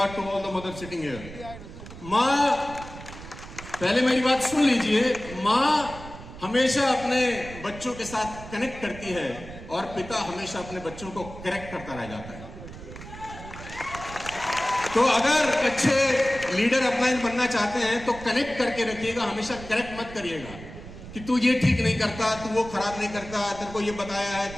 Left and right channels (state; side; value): noise; right; rumble, 14 dB below the sound